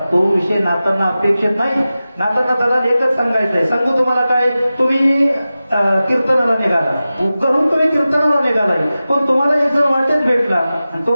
तो विषय नातांना अपेक्षित नाही. नातांना दलाल एकच सांगायचं आहे. सांगू तुम्हाला काय, तुम्ही कीर्तनाला निघाला, घरून तुम्ही कीर्तनाला निघालाय, पण तुम्हाला एक जण वाटेत भेटला आणि तो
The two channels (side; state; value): both; inverted; correlation -0.95